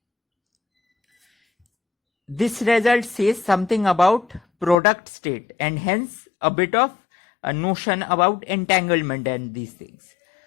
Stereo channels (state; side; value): drops out; right; at 4.8 s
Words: says something about product state, and hence a bit of a notion about entanglement and these things.